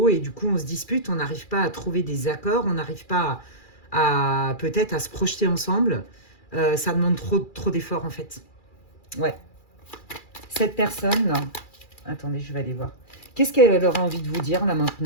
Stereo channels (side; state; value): right; late; 2.4 ms